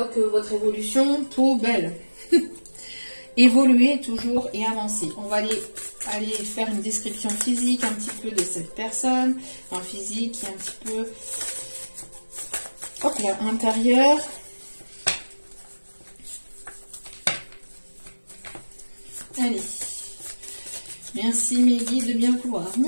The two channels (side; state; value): both; inverted; correlation -1.00